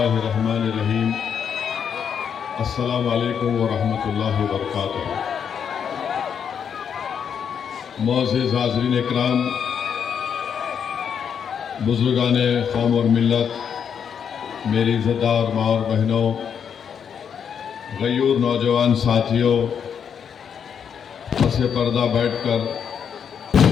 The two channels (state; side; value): quieter; right; 7.6 dB